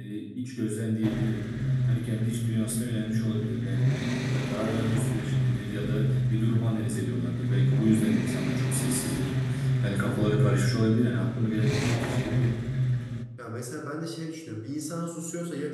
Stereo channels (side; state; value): both; identical; correlation 1.00